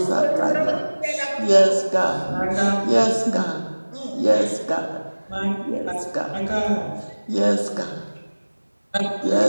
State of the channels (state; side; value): inverted; both; correlation -1.00